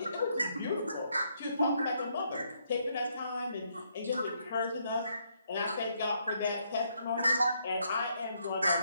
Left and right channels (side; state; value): both; inverted; correlation -0.73